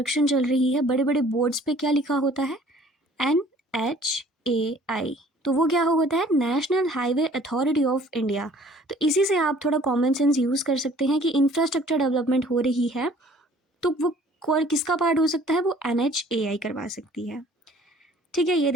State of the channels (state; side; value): normal; both; correlation 0.54